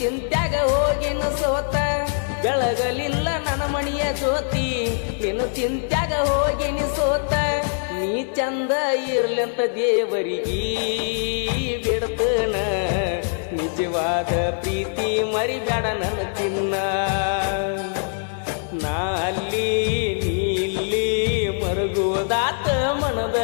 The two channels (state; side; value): silent; right; digital silence